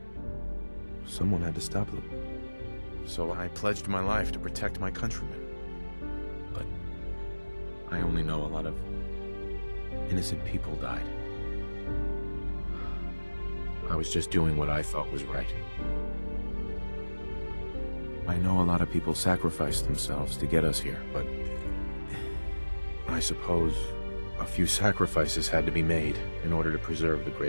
Someone had to stop them. So I pledged my life to protect my countrymen. But I only know a lot of innocent people died. I was just doing what I thought was right. I know a lot of people sacrificed themselves to get us here, but I suppose a few sacrifices had to be made in order to preserve the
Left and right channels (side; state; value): both; inverted; correlation -1.00